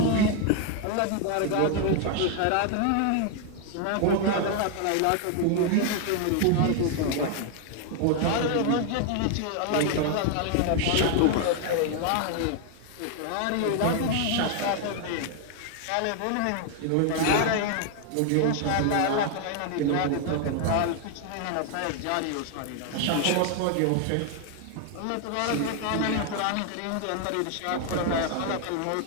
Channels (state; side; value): different; both; correlation 0.00